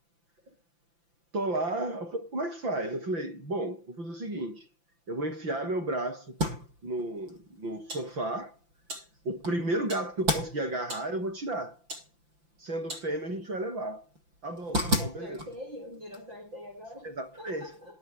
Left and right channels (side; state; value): left; late; 5.9 ms